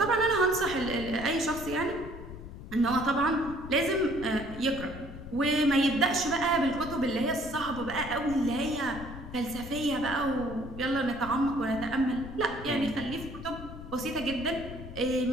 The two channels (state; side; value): noise; left; rumble, 12 dB below the sound